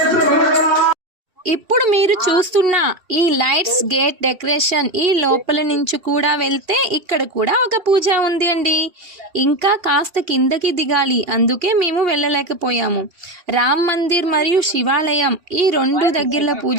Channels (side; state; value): left; late; 2.8 ms